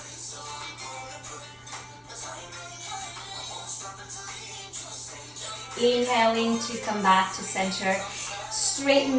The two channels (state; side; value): identical; both; correlation 1.00